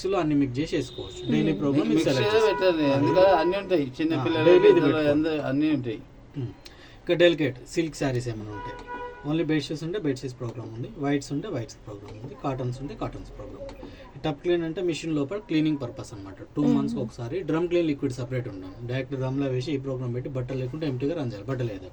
అన్ని మిక్స్ చేసి వేసుకోవచ్చు. డైలీ ప్రోగ్రామ్ అన్నీ ఉంటాయి, చిన్నపిల్లలు అన్నీ ఉంటాయి. ఇంకా డెలికేట్ సిల్క్ శారీస్ ఏమైనా ఉంటాయి, ఓన్లీ బెడ్షీట్స్ ఉంటే బెడ్షీట్స్ ప్రోగ్రామ్ ఉంది, వైట్స్ ఉంటే వైట్స్ ప్రోగ్రామ్ ఉంది, కాటన్స్ ఉంటే కాటన్స్ ప్రోగ్రామ్ ఉంది. టప్ క్లీన్ అంటే మిషన్ లోపల క్లీనింగ్ పర్పస్ అనమాట. 2 months ఒకసారి డ్రమ్ క్లీన్ లిక్విడ్ సపరేట్ ఉంటాం. డైరెక్ట్ డ్రమ్లో వేసి ఈ ప్రోగ్రామ్ పెట్టి బట్టలు లేకుంటే ఎంటీగా రన్ చేయాలి. బట్టలు లేదు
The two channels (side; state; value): both; identical; correlation 1.00